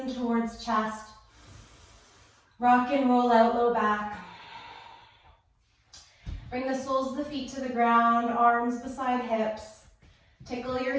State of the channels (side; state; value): both; identical; correlation 1.00